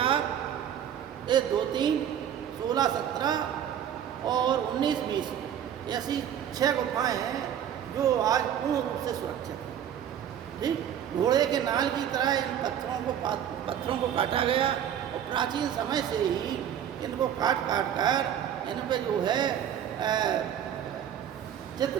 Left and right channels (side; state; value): left; quieter; 9.6 dB